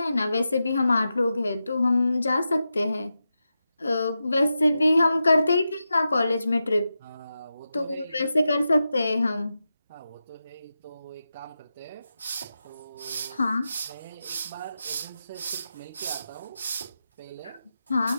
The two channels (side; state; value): both; inverted; correlation -0.90